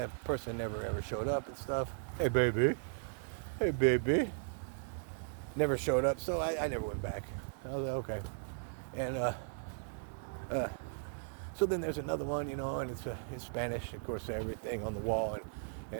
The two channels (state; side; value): silent; left; digital silence